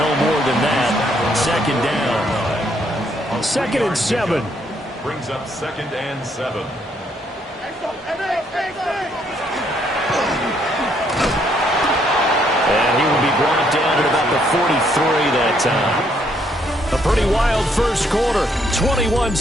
more than that. 2nd down. 2nd and 7. Brings up 2nd and 7. And he will be brought down at about the 43 that time. A pretty wild first quarter.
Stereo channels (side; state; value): both; normal; correlation 0.70